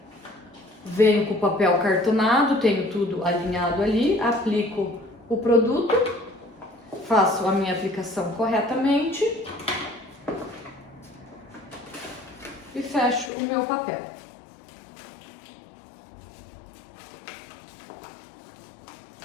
venho com o papel cartonado, tenho tudo alinhado ali, aplico o produto, faço a minha aplicação corretamente e fecho o meu papel.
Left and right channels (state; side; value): drops out; right; at 13.3 s